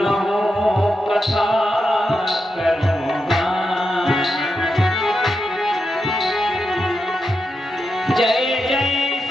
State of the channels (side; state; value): both; normal; correlation 0.87